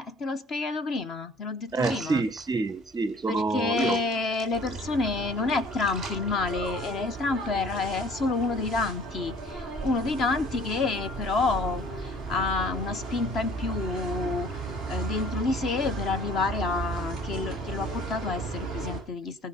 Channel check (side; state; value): both; normal; correlation 0.52